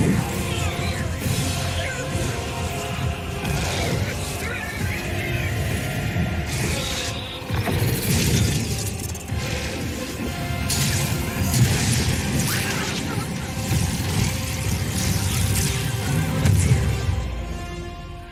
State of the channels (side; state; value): both; identical; correlation 1.00